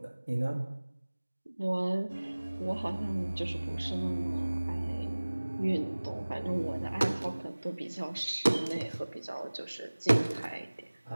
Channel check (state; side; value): inverted; both; correlation -1.00